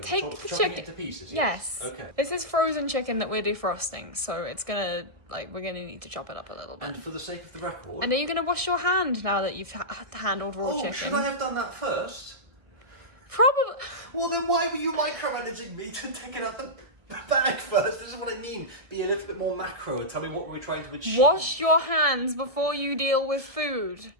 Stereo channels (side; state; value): left; late; 1.6 ms